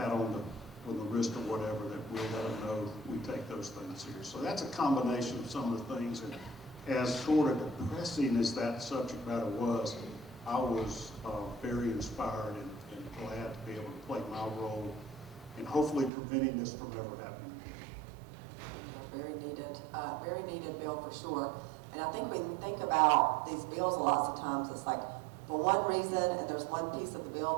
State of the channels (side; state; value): left; drops out; at 16.1 s